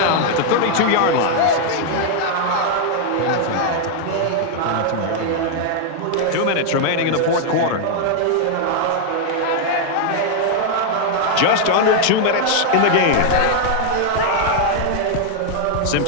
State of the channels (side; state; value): both; different; correlation 0.00